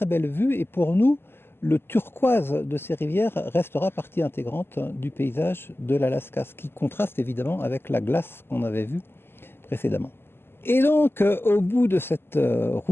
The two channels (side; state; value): right; late; 0.11 ms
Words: belles vues. Et pour nous, le turquoise de ces rivières restera partie intégrante du paysage de l'Alaska, ce qui contraste évidemment avec la glace qu'on avait vue précédemment. Et donc, au bout de cette